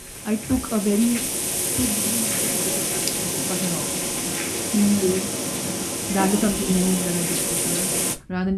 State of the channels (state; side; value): identical; both; correlation 1.00